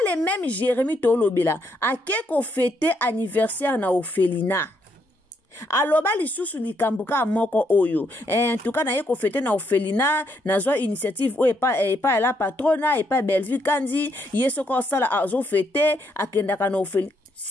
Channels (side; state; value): both; normal; correlation 0.75